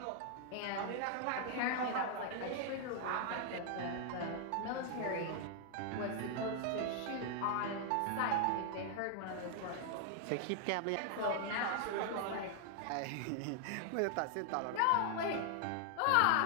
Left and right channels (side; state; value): both; different; correlation 0.00